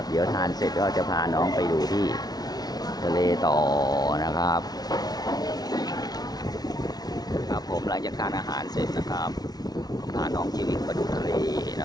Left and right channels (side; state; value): right; late; 0.19 ms